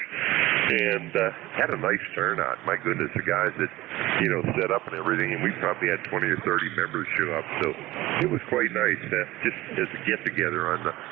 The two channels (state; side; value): quieter; left; 18.0 dB